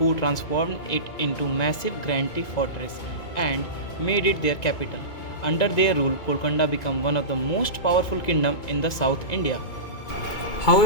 transformed it into massive granite fortress and made it their capital. Under their rule, Golconda became one of the most powerful kingdom in the South India.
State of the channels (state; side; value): late; right; 2.2 ms